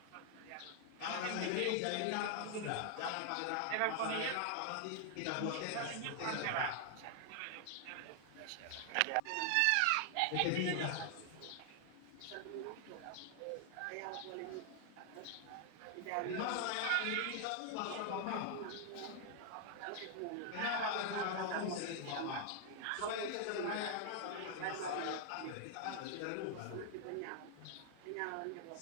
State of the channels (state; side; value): different; both; correlation 0.00